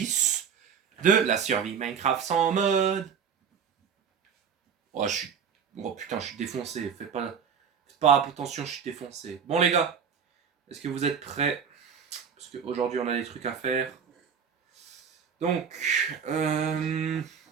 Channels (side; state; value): left; quieter; 7.0 dB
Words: de la survie Minecraft sans mode. Oh, oh putain, je suis défoncé. Faites pas attention, je suis défoncé. Bon les gars, est-ce que vous êtes prêts? Parce qu'aujourd'hui on a des trucs à faire. Donc,